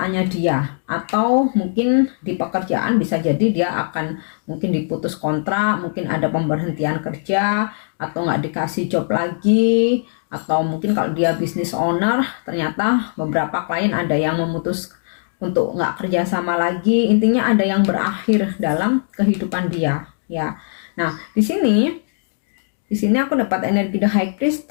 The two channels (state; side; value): silent; right; digital silence